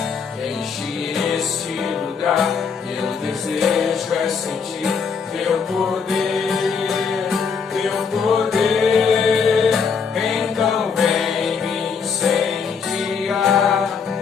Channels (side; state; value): right; quieter; 5.9 dB